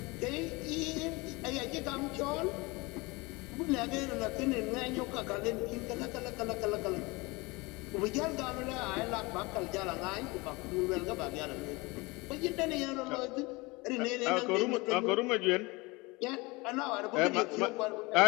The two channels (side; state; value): right; quieter; 24.7 dB